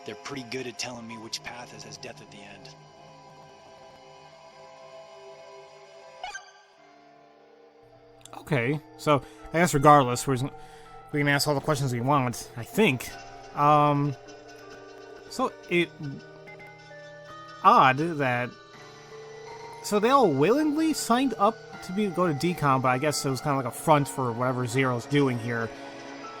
They're pretty good at telling me which path has death at the end. Okay, so I guess regardless, we can ask all the questions we want, I think. So it odd that they all willingly signed up to go to DCOM, but I guess it was kind of like a front for whatever Zero's doing here.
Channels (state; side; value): identical; both; correlation 1.00